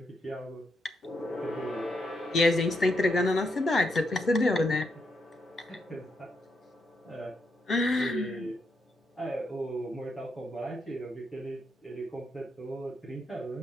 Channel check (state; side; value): normal; both; correlation 0.80